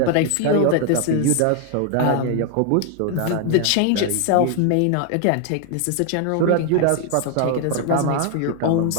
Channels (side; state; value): both; different; correlation 0.00